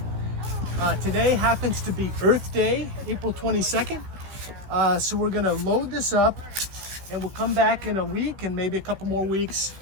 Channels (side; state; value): left; late; 16 ms